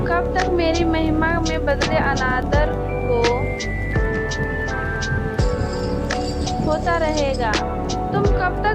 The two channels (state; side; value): identical; both; correlation 1.00